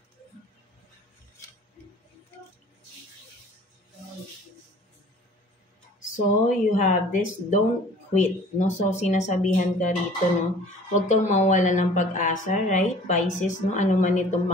So, you have this, don't quit, no? So, sinasabihan ka rito, no? Huwag kang mawala ng pag-asa, right? Pisces, no? Ano man itong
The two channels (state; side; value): normal; both; correlation 0.49